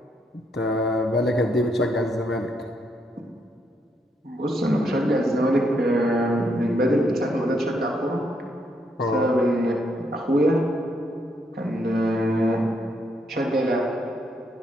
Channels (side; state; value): both; normal; correlation 0.76